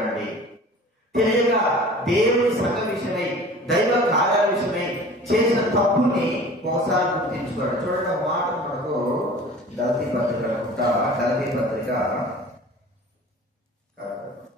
తెలియక దేవుని సంఘ విషయమై, దైవ కార్యాల విషయమై చేసిన తప్పుని ఒకసారి గుర్తించుకోండి. చూడండి, మాట మనకు గలతీ పత్రిక గలతీ పత్రిక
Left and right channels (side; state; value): both; normal; correlation 0.43